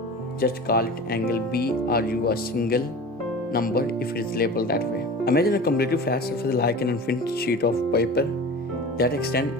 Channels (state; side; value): normal; both; correlation 0.35